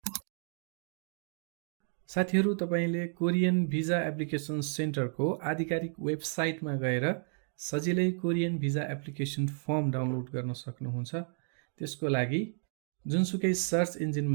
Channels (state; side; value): silent; left; 56 dB below the other